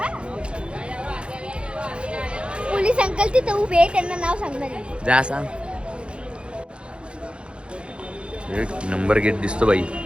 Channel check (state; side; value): late; left; 0.057 ms